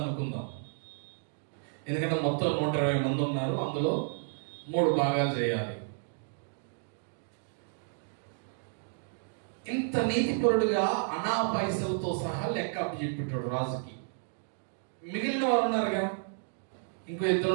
అనుకుందాం. ఎందుకంటే మొత్తం 120 మంది ఉన్నారు. అందులో 3 భాగాలు చేయాలి. ఇంత నీతిపరుడుగా అనా పైసలతో సహా లెక్క అప్పచెప్పెట్టాడు రాజుకి. మిగిలిన వారు ఉన్నారుగా, ఇంకో 2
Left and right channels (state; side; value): silent; left; digital silence